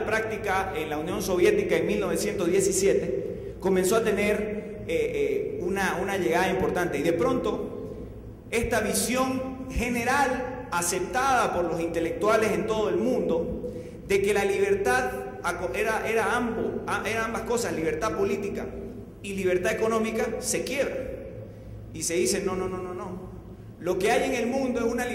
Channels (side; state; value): both; identical; correlation 1.00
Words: práctica en la Unión Soviética en 1917, comenzó a tener una llegada importante. Y de pronto, esta visión general, aceptada por los intelectuales en todo el mundo, de que la libertad era ambas cosas, libertad política y libertad económica, se quiebra. Y se dice, no. Lo que hay en el mundo es una